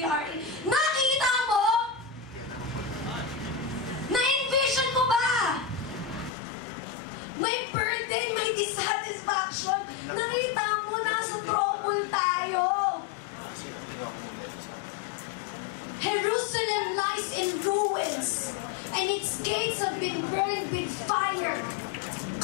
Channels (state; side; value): drops out; right; at 6.3 s